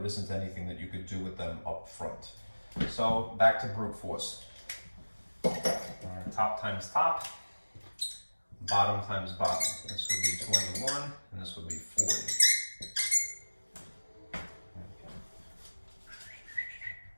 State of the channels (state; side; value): inverted; both; correlation -1.00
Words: isn't anything that you could do with them up front. So back to brute force. Top times top, bottom times bottom. This would be 21, and this would be 40.